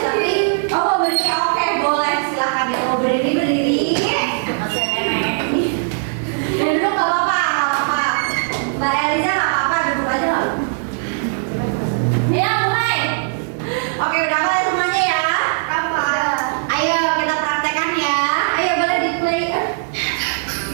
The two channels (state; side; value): silent; left; digital silence